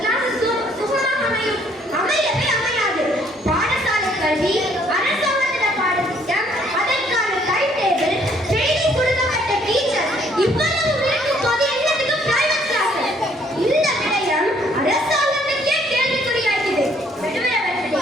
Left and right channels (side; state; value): both; normal; correlation 0.64